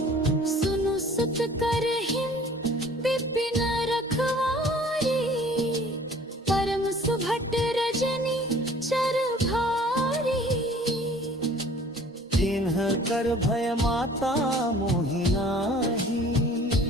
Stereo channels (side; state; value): both; normal; correlation 0.51